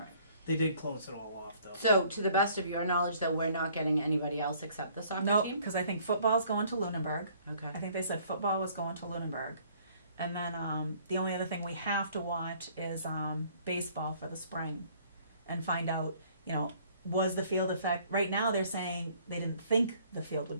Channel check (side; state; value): both; inverted; correlation -0.59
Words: They did close it all off though. So, to the best of your knowledge, though, we're not getting anybody else except the soccer No, team? because I think football's going to Lunenburg. Okay. I think they said football was going to Lunenburg. And then the only other thing we have to watch is baseball for the spring and find out, was the field affected? Right now they're saying they didn't think the field would